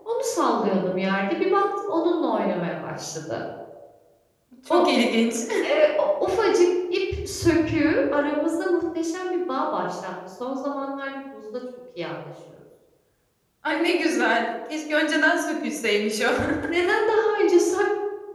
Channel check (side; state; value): both; identical; correlation 1.00